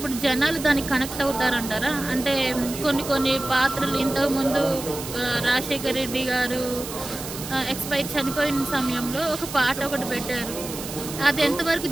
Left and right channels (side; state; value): right; noise; hiss, 10 dB below the sound